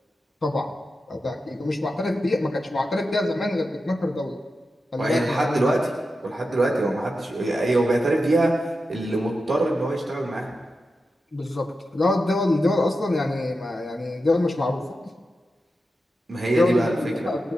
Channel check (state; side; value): normal; both; correlation 0.90